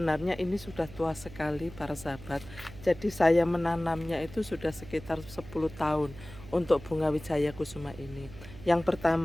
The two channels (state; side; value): noise; right; hum, 16 dB below the sound